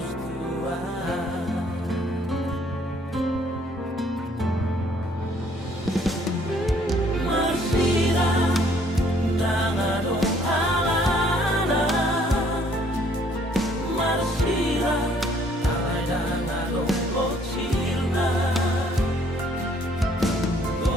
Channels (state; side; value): normal; both; correlation 0.62